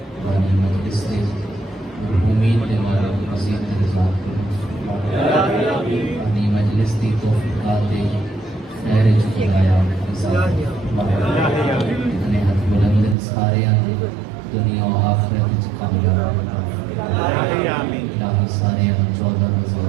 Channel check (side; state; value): left; drops out; at 13.2 s